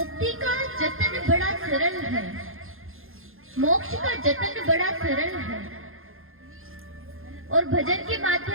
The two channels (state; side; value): late; left; 0.60 ms